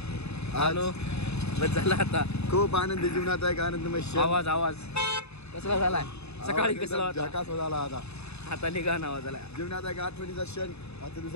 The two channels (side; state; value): right; late; 0.80 ms